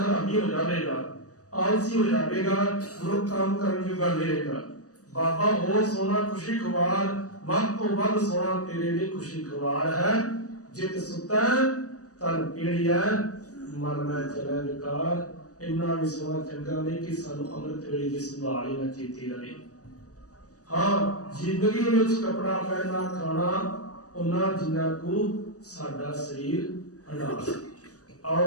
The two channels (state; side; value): late; right; 0.66 ms